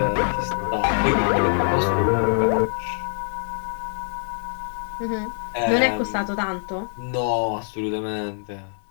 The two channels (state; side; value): silent; right; digital silence